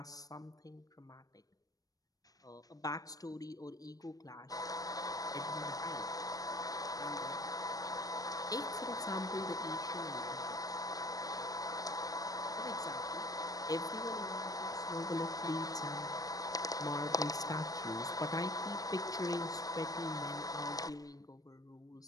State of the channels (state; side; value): late; right; 0.18 ms